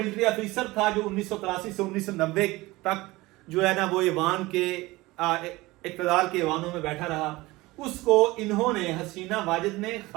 آفیسر تھا جو 1983 سے 1990 تک جو ہے نا وہ ایوان کے اقتدار کے ایوانوں میں بیٹھا رہا، اس کو انہوں نے، حسینہ واجد نے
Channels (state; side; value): quieter; left; 20.5 dB